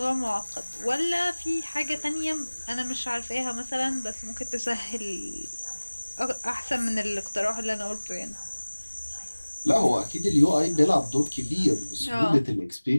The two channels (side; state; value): both; inverted; correlation -1.00